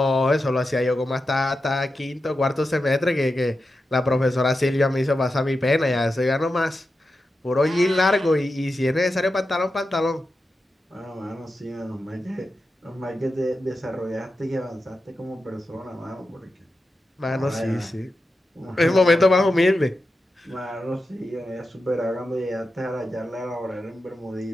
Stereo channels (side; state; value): both; normal; correlation 0.90